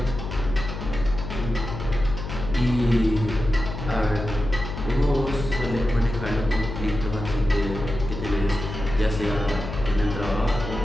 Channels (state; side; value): noise; left; hum, 7 dB below the sound